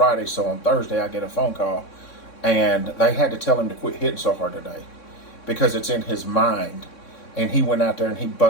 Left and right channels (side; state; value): right; late; 3.6 ms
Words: so on Thursday I get a phone call, and they had to tell him to quit hitting so hard today because it's in his mind. And he went out there and he